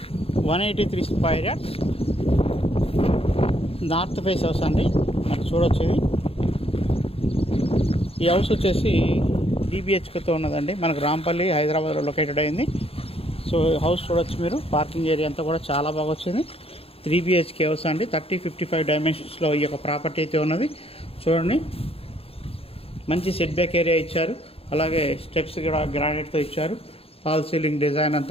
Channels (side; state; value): right; late; 0.28 ms